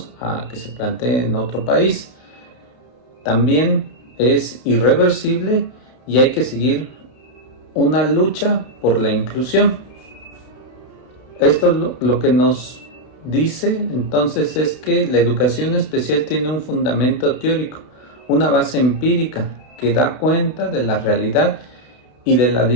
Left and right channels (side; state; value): right; late; 31 ms